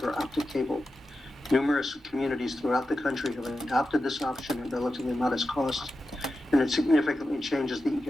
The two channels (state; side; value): normal; both; correlation 0.91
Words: optic cable. Numerous communities throughout the country have adopted this option at relatively modest cost, and it significantly changes the